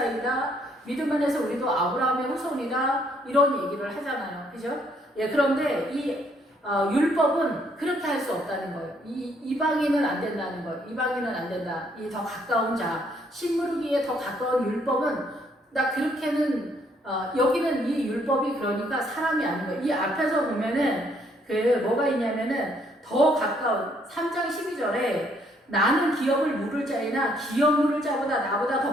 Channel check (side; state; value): both; normal; correlation 0.68